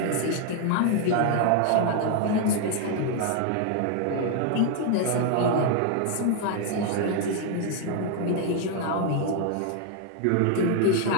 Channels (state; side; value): different; both; correlation 0.00